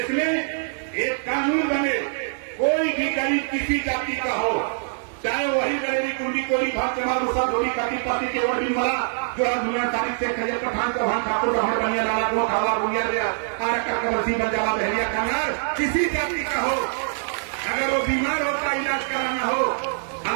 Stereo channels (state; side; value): silent; left; digital silence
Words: में एक कानून बने, कोई भी गरीब किसी जाति का हो, चाहे वही गरीबी कुंडी कोई भाग चमार मुसा धोरी काटी पाती के वर्दी मला जो दुनिया तारीख से खजर पठान का भान ठाकुर रहमान बनिया लाला को खावा बुनिया रे आर का कबरसी बंजाला बहरिया कनार किसी जाति का हो, अगर वो बीमार होता इलाज कराना हो,